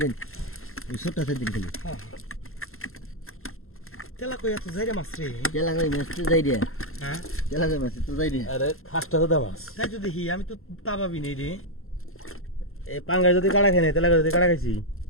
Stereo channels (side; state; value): right; late; 0.62 ms